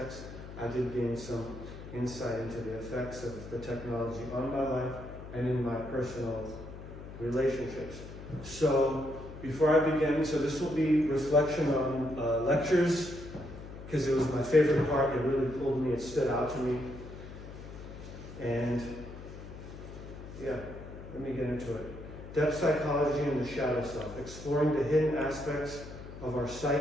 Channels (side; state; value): left; noise; hum, 13 dB below the sound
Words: I did gain some insight into the effects of the technology on my life and in my personal relationships. So before I begin, so this will be reflection on lectures, because it was my favorite part. It really pulled me, it stood out to me. And yeah, let me get into it. Depth psychology and the shadow self, exploring the hidden aspects of our